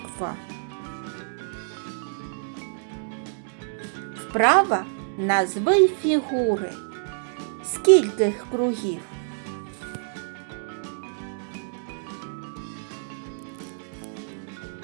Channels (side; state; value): left; silent; digital silence